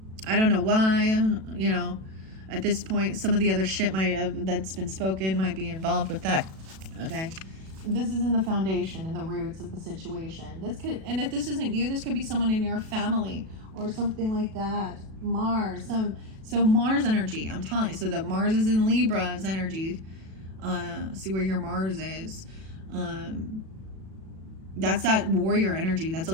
I don't know why, you know, at this point, some of the other shit that's been spoken might be involved with that, okay? This is in the foundation, in the roots of the situation. And if this isn't you, this could be someone in your family or something like that. Mars, so Mars energy, I'm telling you. So that Mars is in Libra's energy. See where your Mars is. That's that warrior energy. That's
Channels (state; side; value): late; left; 37 ms